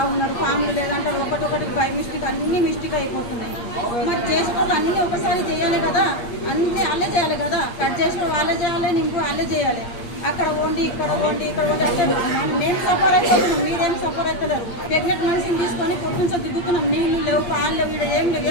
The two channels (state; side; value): late; right; 8.6 ms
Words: ఉన్నారు, ఫామ్లు లేదంటే ఒకటి బై మిస్టేక్ అన్ని మిస్టేక్ అయిపోతున్నాయి. మరి చేసేటప్పుడు అన్నీ ఒకసారి చేయాలి కదా, అన్నీ వాళ్ళే చేయాలి కదా, కట్ చేసి వాళ్ళే చేయాలి, నింపు వాళ్ళే చేయాలి. అక్కడ వండి ఇక్కడ వండి అంటే మేము సఫర్ అయిపోతున్నాం, మీరేం సఫర్ అవుతలేరు. ప్రెగ్నెంట్ మనిషిని తీసుకొని పొద్దుంచో దిగుతున్నాం, నీళ్ళు లేవు, పాలు లేవు, ఇక్కడ ఏం లేవు,